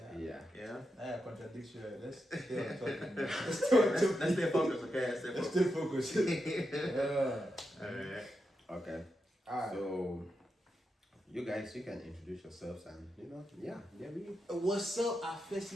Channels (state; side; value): normal; both; correlation 0.86